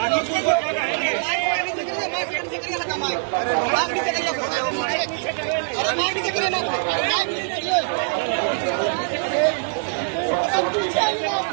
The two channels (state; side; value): silent; left; digital silence